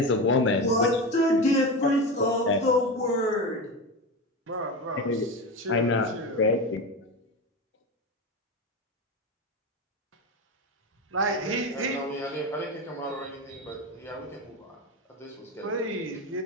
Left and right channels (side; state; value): both; normal; correlation 0.21